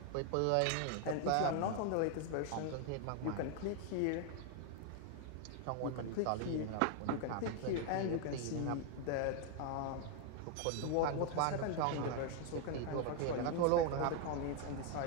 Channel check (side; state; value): both; different; correlation 0.00